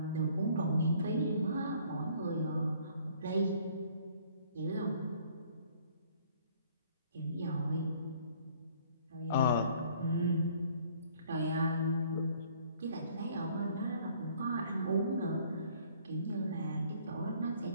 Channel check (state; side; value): inverted; both; correlation -0.58